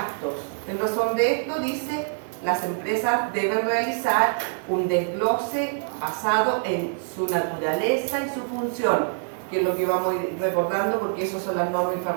En razón de esto dice, las empresas deben realizar un desglose basado en su naturaleza y su función, que es lo que vamos a ir recordando porque esas son las normas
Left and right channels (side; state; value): left; silent; 57 dB below the other